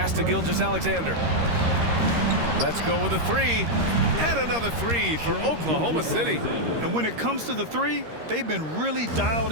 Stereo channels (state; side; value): late; left; 13 ms